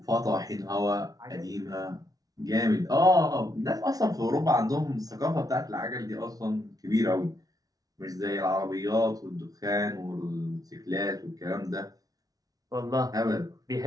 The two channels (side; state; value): left; late; 0.18 ms